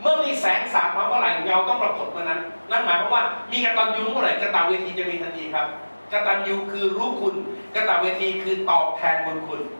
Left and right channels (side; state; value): both; inverted; correlation -1.00